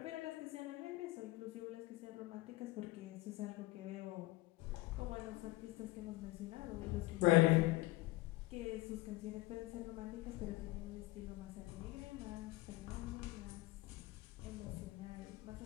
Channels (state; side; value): quieter; right; 19.8 dB